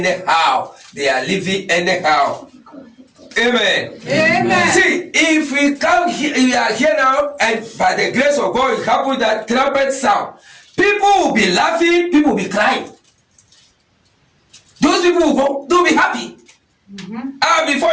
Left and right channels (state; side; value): identical; both; correlation 1.00